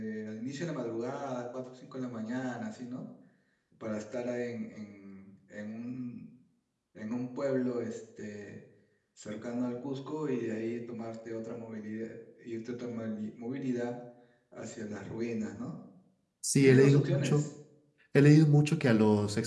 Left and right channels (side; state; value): both; identical; correlation 1.00